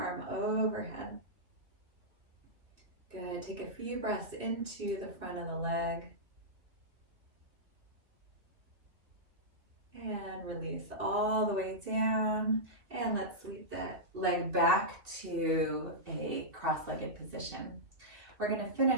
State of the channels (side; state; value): left; late; 2.8 ms